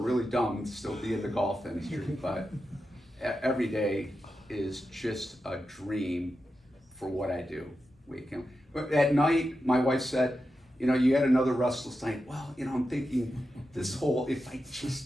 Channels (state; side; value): normal; both; correlation 0.89